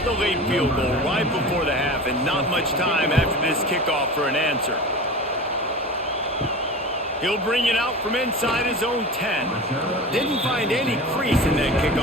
the late field goal right before the half and not much time after this kickoff for an answer. He'll bring it out from inside his own 10. Didn't find any crease in that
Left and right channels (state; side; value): normal; both; correlation 0.32